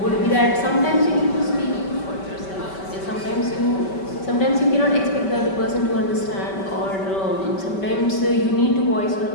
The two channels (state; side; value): late; right; 5.2 ms